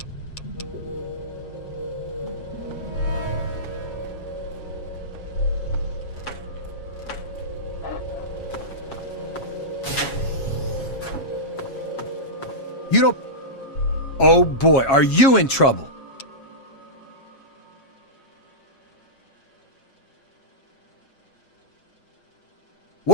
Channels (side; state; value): right; late; 7.2 ms